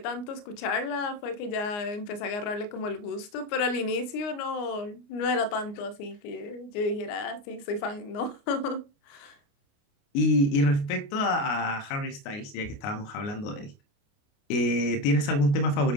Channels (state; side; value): late; right; 29 ms